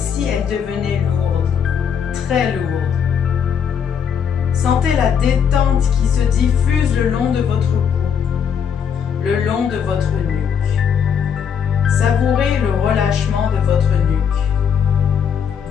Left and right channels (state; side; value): quieter; right; 7.5 dB